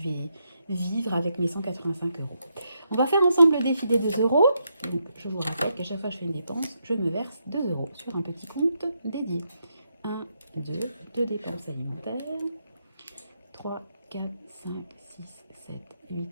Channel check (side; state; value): both; inverted; correlation -0.80